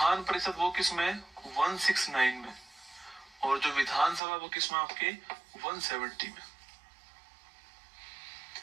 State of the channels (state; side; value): drops out; left; at 4.2 s